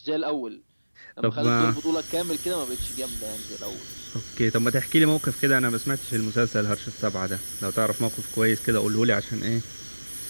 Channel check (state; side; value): inverted; both; correlation -1.00